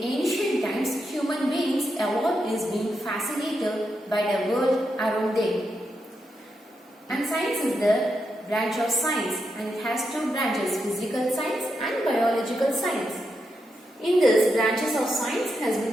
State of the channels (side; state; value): both; normal; correlation 0.84